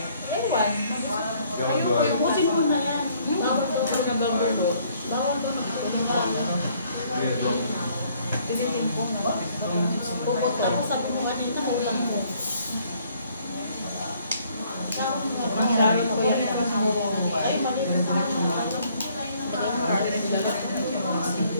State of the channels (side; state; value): both; inverted; correlation -0.63